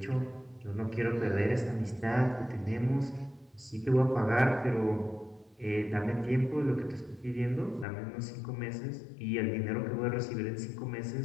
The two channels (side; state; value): right; drops out; at 7.9 s